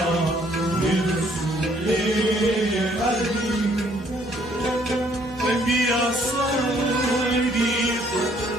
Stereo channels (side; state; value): both; normal; correlation 0.64